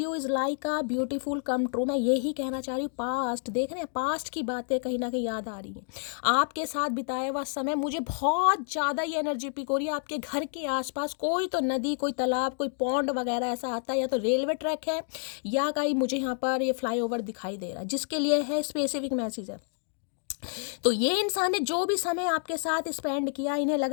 is like a beautiful come true, मैं यही कहना चाह रही हूँ। पास्ट देख रहे हैं, पास्ट की बातें कहीं ना कहीं याद आ रही हैं, आपके साथ बिताया हुआ समय मुझे बहुत ज़्यादा ये एनर्जी पिक हो रही है। आपके घर के आसपास कोई तो नदी, कोई तालाब, कोई पॉन्ड वगैरह ऐसा आता है, या तो रेलवे ट्रैक है या कहीं मुझे यहाँ पर ये फ्लाईओवर दिखाई दे रहा है, जिसके लिए है स्पेसिफिक मैसेज है। तो ये इंसान ने जो भी समय आपके साथ स्पेंड किया, इन्हें लग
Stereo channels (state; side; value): silent; right; 59 dB below the other